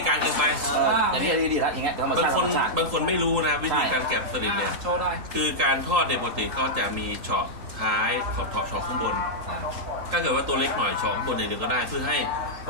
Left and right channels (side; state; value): left; late; 3.8 ms